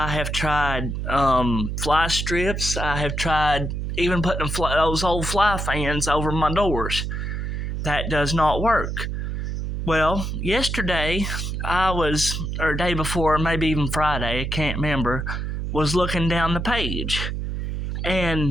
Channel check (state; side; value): noise; right; hum, 3 dB below the sound